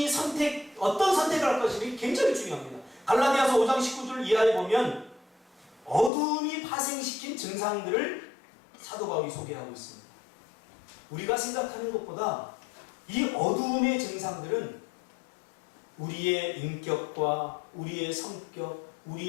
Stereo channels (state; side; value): drops out; right; at 6.1 s